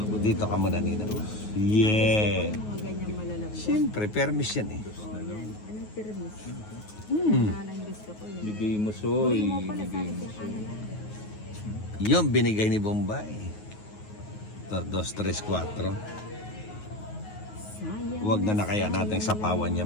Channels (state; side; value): late; right; 9.4 ms